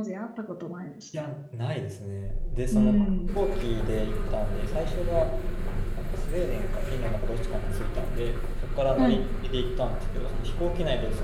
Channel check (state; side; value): identical; both; correlation 1.00